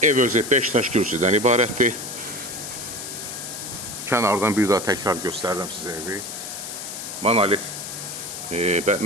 Ev özü 5 daş kürsüdən ibarətdir. Kənardan bir daha təkrar göstərirəm sizə evi. Monolit,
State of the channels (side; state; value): left; noise; hiss, 8 dB below the sound